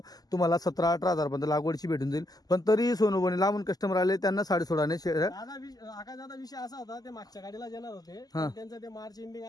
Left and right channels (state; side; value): late; right; 0.18 ms